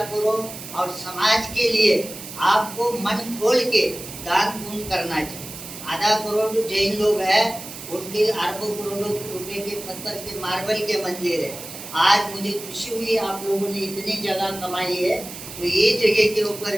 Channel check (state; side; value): noise; right; hiss, 12 dB below the sound